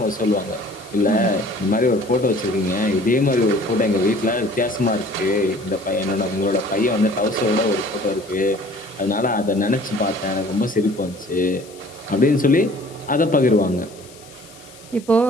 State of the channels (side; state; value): left; noise; hiss, 22 dB below the sound